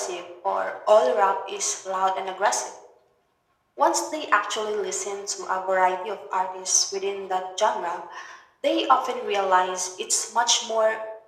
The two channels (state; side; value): identical; both; correlation 1.00